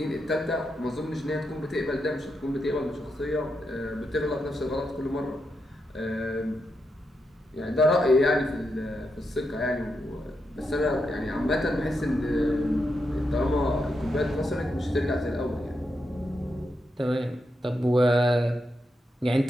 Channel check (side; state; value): both; normal; correlation 0.84